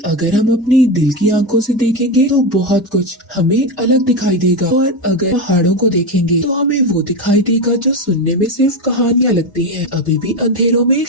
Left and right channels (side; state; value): both; normal; correlation 0.14